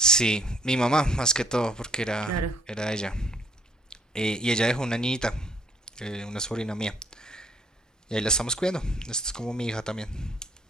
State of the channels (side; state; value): both; normal; correlation 0.61